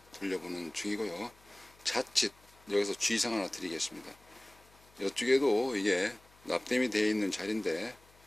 돌려보는 중이고요. 자칫 여기서 주의사항 하나 드리겠습니다. 이쪽에도 이게 납땜이 되어 있는 자리인데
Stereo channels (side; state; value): left; noise; hum, 28 dB below the sound